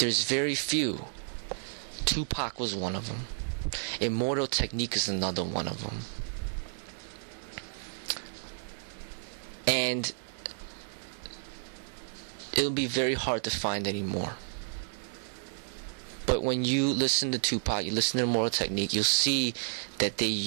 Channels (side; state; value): left; silent; digital silence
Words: very few. Tupac was one of them. Immortal Technique is another one of them. And it'll be very hard to find anymore. But when you listen to Tupac, you listen to Immortal Technique, you'll see that they